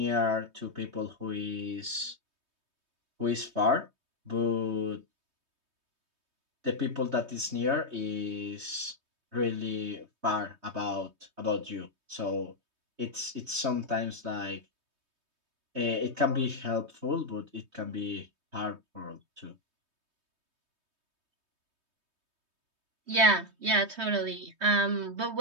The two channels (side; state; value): left; late; 3.2 ms